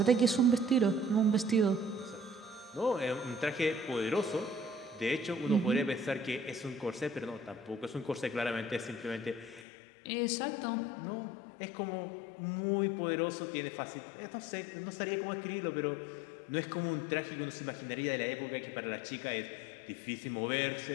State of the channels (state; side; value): drops out; right; at 9.7 s